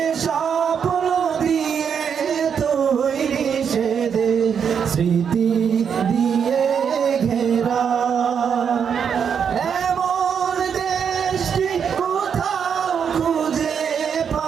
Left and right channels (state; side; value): quieter; left; 7.3 dB